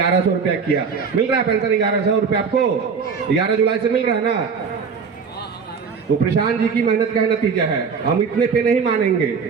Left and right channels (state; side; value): quieter; left; 5.7 dB